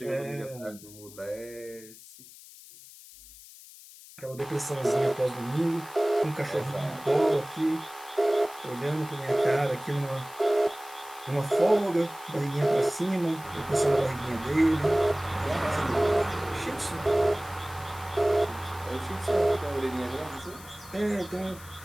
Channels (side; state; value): left; noise; hiss, 19 dB below the sound